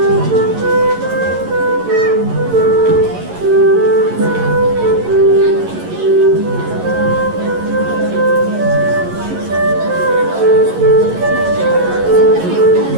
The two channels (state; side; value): late; left; 11 ms